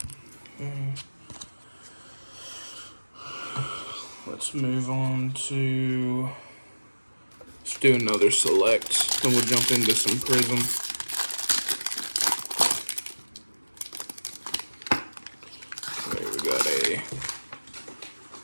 Let's move on to, let's do another select, then we'll jump into some Prism. Okay, we got a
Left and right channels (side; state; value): both; inverted; correlation -1.00